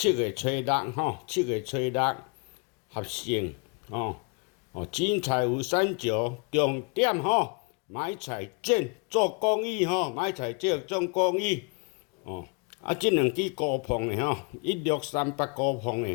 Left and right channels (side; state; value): right; quieter; 34.2 dB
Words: 月初67月初6合成精彩有三九，重点买菜剪做公益买菜剪做公益。这两支高磅的1638高磅